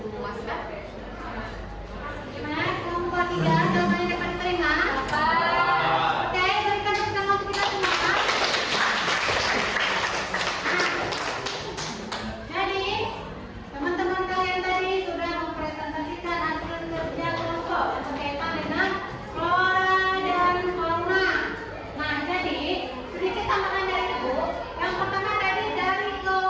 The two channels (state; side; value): identical; both; correlation 1.00